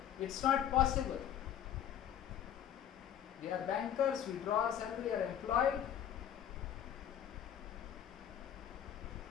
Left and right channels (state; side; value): quieter; right; 10.0 dB